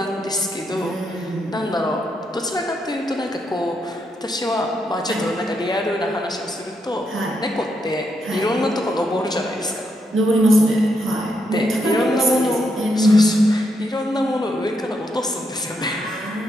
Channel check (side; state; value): both; normal; correlation 0.79